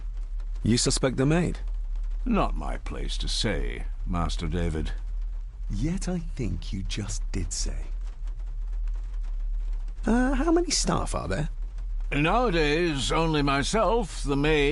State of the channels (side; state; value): both; identical; correlation 1.00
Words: You suspect the maid? Not my place to say, Master David. Yet I think you just did say. How many staff are there? Nowadays, only myself, the